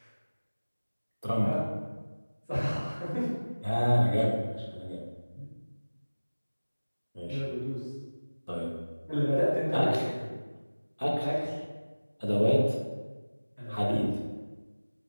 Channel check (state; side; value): inverted; both; correlation -1.00